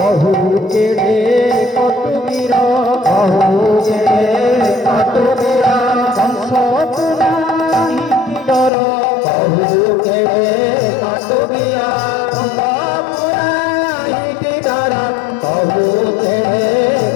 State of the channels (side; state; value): right; drops out; at 8.7 s